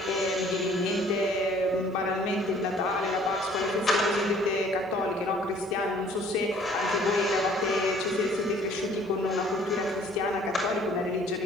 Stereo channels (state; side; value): normal; both; correlation 0.56